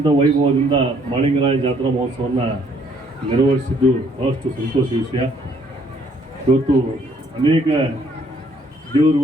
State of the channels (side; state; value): both; normal; correlation 0.65